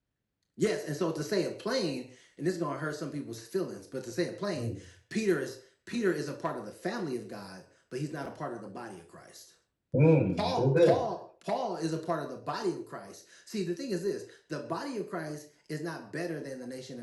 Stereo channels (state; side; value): identical; both; correlation 1.00